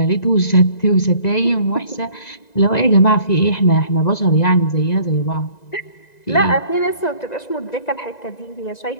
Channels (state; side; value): late; right; 1.9 ms